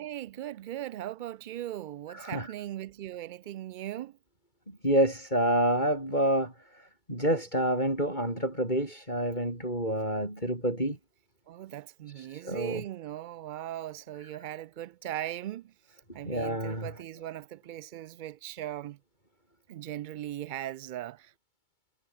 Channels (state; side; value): late; right; 2.2 ms